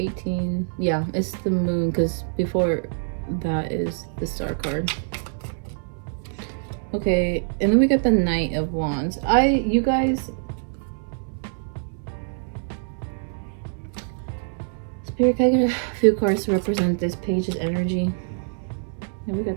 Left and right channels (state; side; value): silent; left; 62 dB below the other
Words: Yeah, it's the Moon, because before that is the Star card. Okay, and then we got the Knight of Wands. You guys, Spirit, can I get a few cards to represent this page's energy? And we